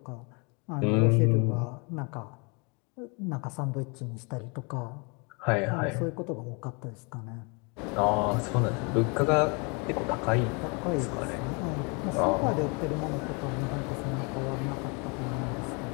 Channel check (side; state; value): right; quieter; 32.3 dB